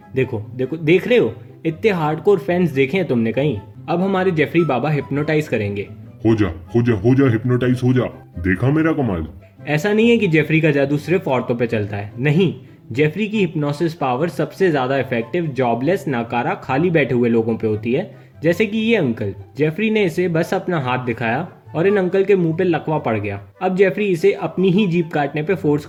देखो देखो, देख रहे हो? इतने हार्डकोर फैंस देखे हैं तुमने कहीं? अब हमारे जेफरी बाबा हिप्नोटाइज करेंगे। हो जा हो जा हो जा, हिप्नोटाइज हो जा। देखा मेरा कमाल? ऐसा नहीं है कि जेफरी का जादू सिर्फ औरतों पे चलता है, नहीं। जेफरी की हिप्नोसिस पावर सबसे ज्यादा इफेक्टिव जॉबलेस, नाकारा, खाली बैठे हुए लोगों पे होती है, जैसे कि ये अंकल। जेफरी ने इसे बस अपना हाथ दिखाया और इन अंकल के मुंह पे लकवा पड़ गया। अब जेफरी इसे अपनी ही जीभ काटने पे फोर्स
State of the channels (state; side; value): identical; both; correlation 1.00